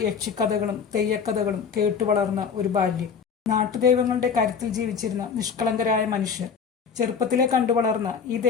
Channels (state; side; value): quieter; right; 6.3 dB